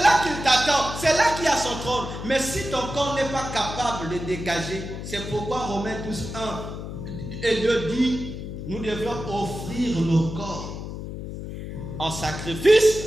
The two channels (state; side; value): noise; left; hum, 8 dB below the sound